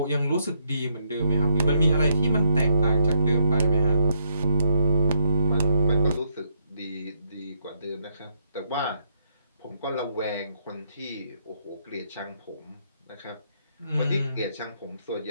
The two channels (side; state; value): both; inverted; correlation -0.76